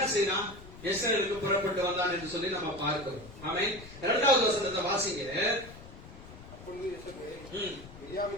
செய்யறான்? எஸ்ரேலுக்கு புறப்பட்டு வந்தான் என்று சொல்லி நம்ம பார்க்கிறோம். ஆமென். 2வது வசனத்தை வாசிங்க.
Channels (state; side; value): noise; left; rumble, 17 dB below the sound